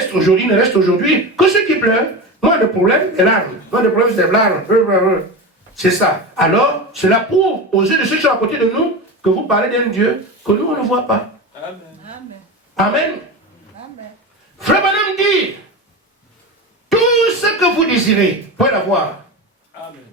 aujourd'hui que ceux qui pleurent. Moi, le problème, c'est l'arme. Moi, le problème, c'est l'arme. C'est ça. Alors, cela prouve aux yeux de ceux qui sont à côté de nous que vous parlez d'un Dieu que nous, on ne voit pas. Amen. Amen. Frère Branham dit, tout ce que vous désirez, vous pouvez l'avoir. Amen.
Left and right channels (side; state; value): both; normal; correlation 0.24